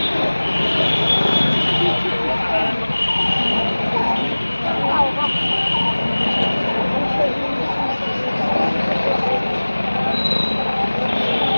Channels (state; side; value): inverted; both; correlation -1.00